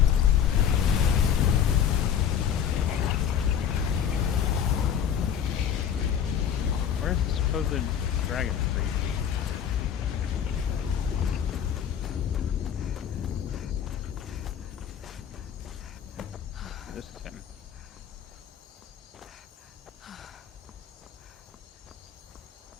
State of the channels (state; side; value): quieter; right; 8.6 dB